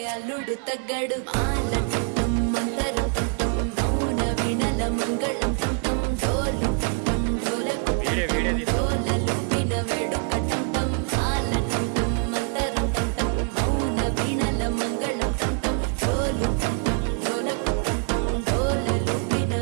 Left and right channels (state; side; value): quieter; left; 37.3 dB